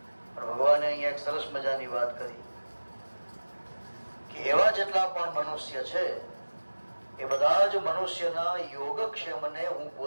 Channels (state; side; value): inverted; both; correlation -1.00